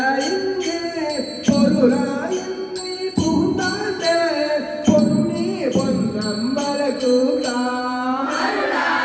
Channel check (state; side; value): identical; both; correlation 1.00